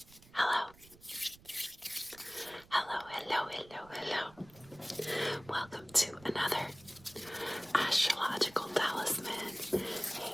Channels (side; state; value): right; noise; rumble, 24 dB below the sound